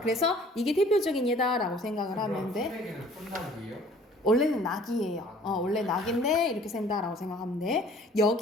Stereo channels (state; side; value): normal; both; correlation 0.53